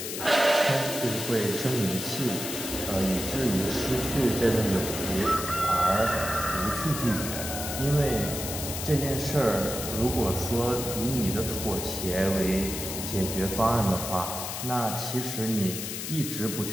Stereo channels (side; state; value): left; noise; hiss, 6 dB below the sound